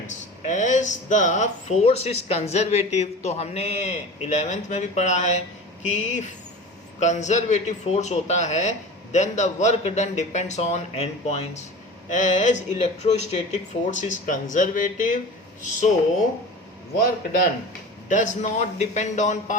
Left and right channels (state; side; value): normal; both; correlation 0.35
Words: as the force is conservative. तो हमने 11th में भी पढ़ा है कि कंजर्वेटिव फोर्स होता है, then the work done depends on end points. As electrostatic force is conservative, so work done does not depend on